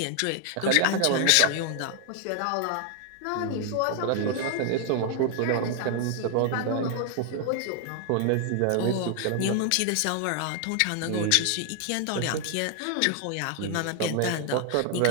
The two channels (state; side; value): different; both; correlation 0.00